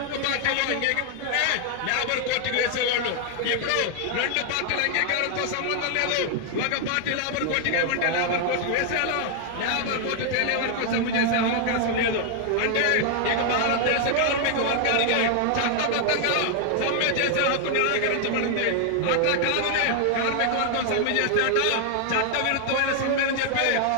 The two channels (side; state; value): both; different; correlation 0.00